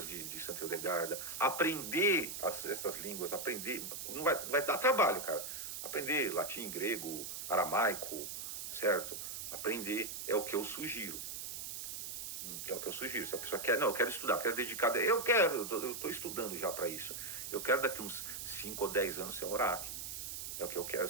de Santo Hildegarda, aprender essas línguas, aprender. Não vai dar trabalho, cara. Aprender latim, grego, aramaico, certo? Aprender é o que eu sugiro. É o que eu sugiro. Se a pessoa quer, eu quero estudar, quero dedicar. Eu estou estudando já para isso. Eu quero daqui uns 5 ou 10 anos ser um Uraki. É o que eu quero,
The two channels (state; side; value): noise; right; hiss, 6 dB below the sound